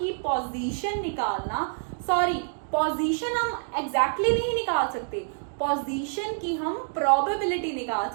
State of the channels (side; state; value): left; silent; digital silence